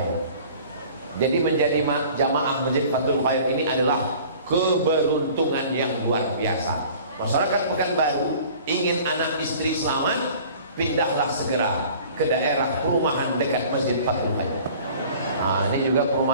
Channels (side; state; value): both; inverted; correlation -0.47